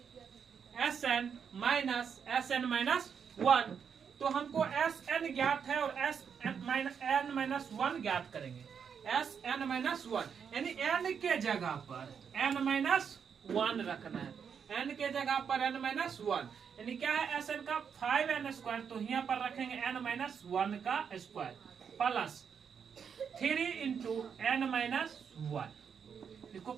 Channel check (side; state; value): left; quieter; 7.0 dB